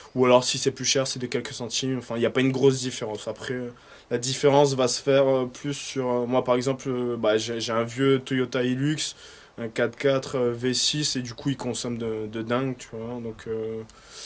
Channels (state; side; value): identical; both; correlation 1.00